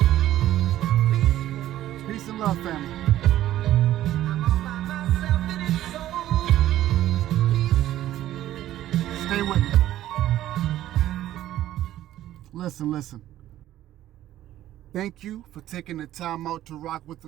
Peace and love, family. I'm all by myself and it's so peaceful. Stay with me. Listen. Thank you for taking the time out to rock with a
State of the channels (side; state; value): left; quieter; 13.4 dB